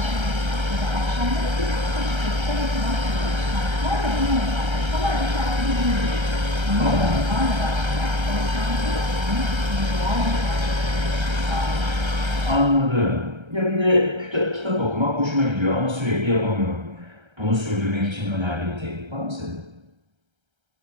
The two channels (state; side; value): late; left; 1.3 ms